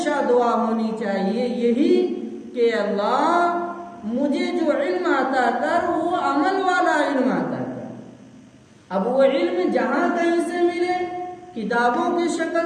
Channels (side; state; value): both; identical; correlation 1.00